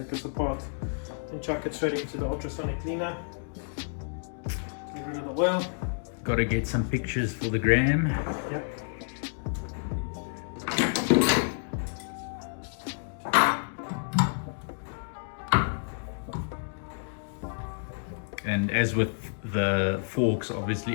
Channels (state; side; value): silent; right; digital silence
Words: this apart and chuck it straight into the ultrasonic cleaner. Get rid of the oil. Gotta get some pictures for the gram. Yep. And as with the forks,